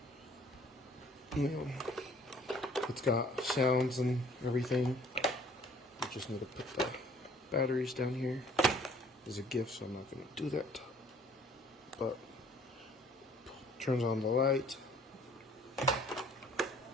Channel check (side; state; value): both; normal; correlation 0.56